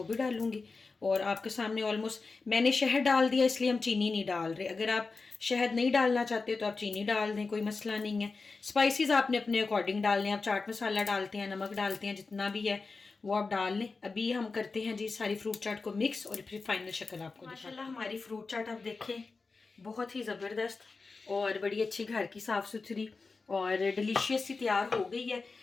भी डालूंगी। और आपके सामने ऑलमोस्ट मैंने शहद डाल दिया, इसलिए हम चीनी नहीं डाल रहे। अगर आप शहद नहीं डालना चाहते तो आप चीनी डाल दें, कोई मसला नहीं है। स्पाइसेस आपने अपने अकॉर्डिंग डालने हैं। आप चाट मसाला डालते हैं, नमक डालते हैं, जितना भी है वो आप डाल लें। अभी हम करते हैं जी सारी फ्रूट चाट को मिक्स और फिर फाइनल शक्ल आपको। माशाल्लाह हमारी फ्रूट चाट आप देखें बहुत ही ज़बरदस्त और बड़ी अच्छी घर की साफ़ सुथरी और डिलीशियस सी तैयार हो गई है।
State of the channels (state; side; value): quieter; right; 4.2 dB